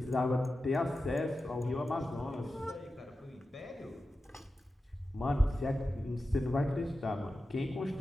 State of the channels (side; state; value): both; normal; correlation 0.93